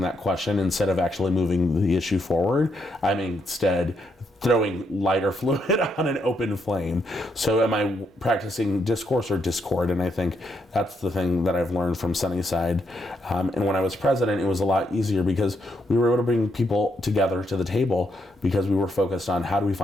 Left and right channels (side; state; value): both; normal; correlation 0.77